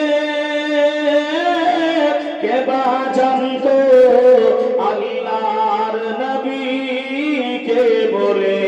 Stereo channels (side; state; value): both; identical; correlation 1.00